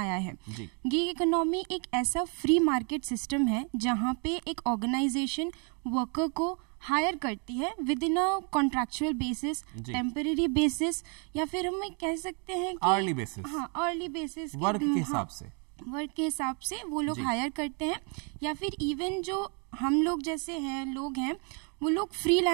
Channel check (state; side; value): quieter; left; 37.1 dB